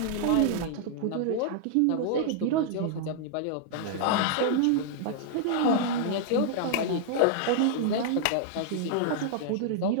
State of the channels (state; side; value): different; both; correlation -0.01